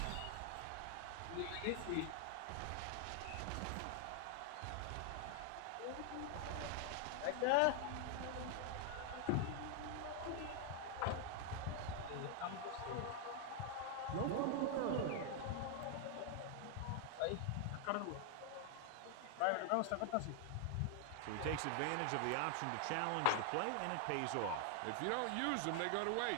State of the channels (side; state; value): both; different; correlation 0.00